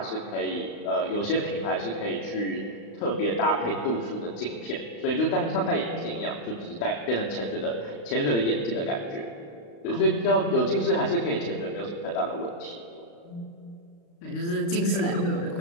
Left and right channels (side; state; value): right; late; 35 ms